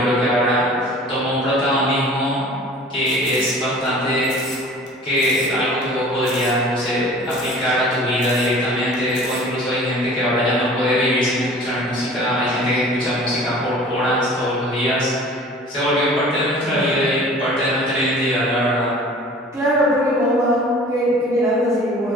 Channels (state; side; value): normal; both; correlation 0.45